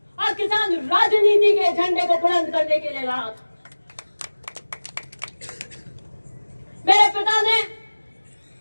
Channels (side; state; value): both; inverted; correlation -1.00